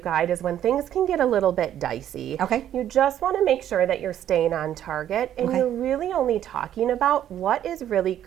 is when things can get a little bit dicey. Okay. You just want to make sure that you're staying on target and you're really only talking about what is really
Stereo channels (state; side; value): quieter; left; 11.0 dB